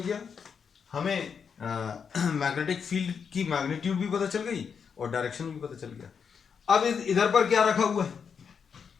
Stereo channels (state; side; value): quieter; right; 6.5 dB